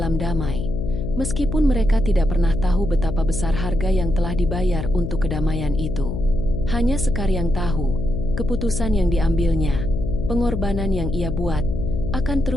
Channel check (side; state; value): left; noise; hum, 5 dB below the sound